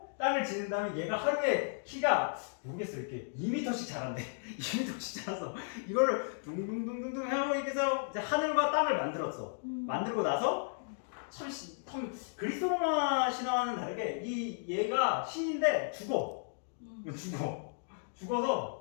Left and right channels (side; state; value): right; silent; digital silence